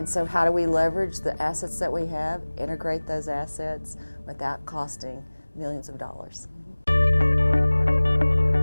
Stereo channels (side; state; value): both; inverted; correlation -1.00